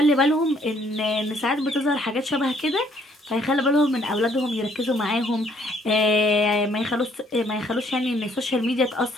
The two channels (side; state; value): both; normal; correlation 0.65